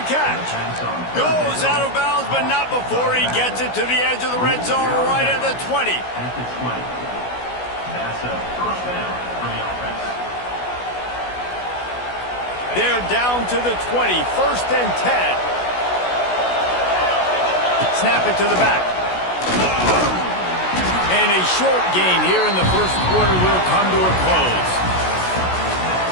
catch. Goes out of bounds, but not before he gets it to the edge of the red zone right at the 20. That's a first down for the offense. They're down to the 20, 1st and 10. Snap it to the back. And a short gain here in the first quarter will come to a close.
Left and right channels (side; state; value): right; late; 16 ms